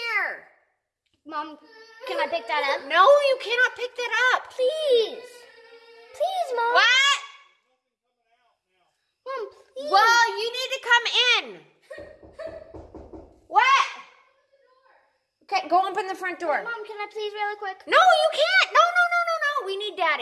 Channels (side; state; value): both; identical; correlation 1.00